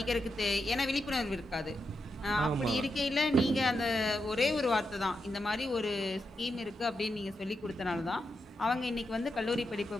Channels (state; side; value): normal; both; correlation 0.85